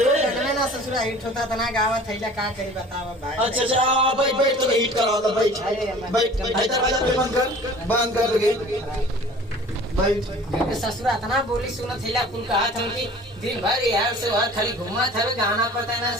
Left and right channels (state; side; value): normal; both; correlation 0.46